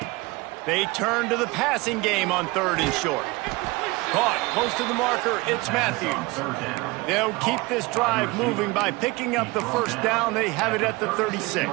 They turn to the passing game on 3rd and short. Caught close to the marker, it's Matthews. They'll keep this drive moving by picking up the 1st down. They have it at the 36.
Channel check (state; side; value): quieter; left; 23.3 dB